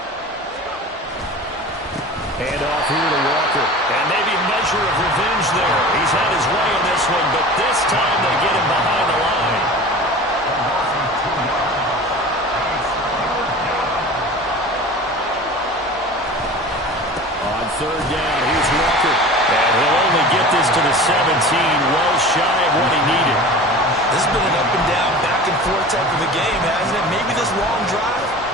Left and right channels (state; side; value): normal; both; correlation 0.37